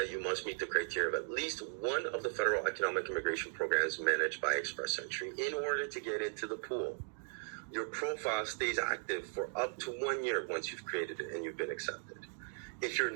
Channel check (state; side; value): silent; left; digital silence